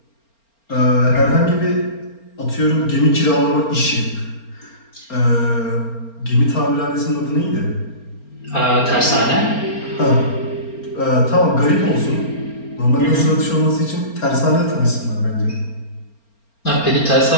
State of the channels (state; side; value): late; right; 4.4 ms